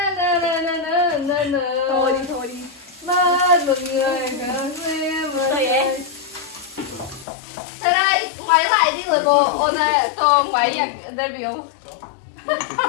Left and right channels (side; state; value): right; drops out; at 7.2 s